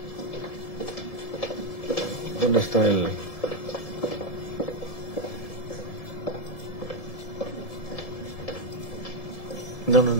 ¿dónde está el...? No,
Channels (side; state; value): right; late; 1.7 ms